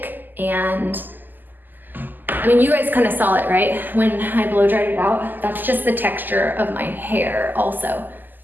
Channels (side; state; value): left; late; 0.088 ms